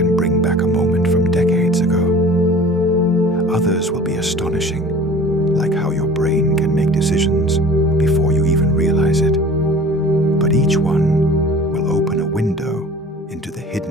bring back a moment from decades ago. Others will be astonishing, like how your brain can make decisions before you even realize it. But each one will open a window into the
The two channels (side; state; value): both; normal; correlation 0.44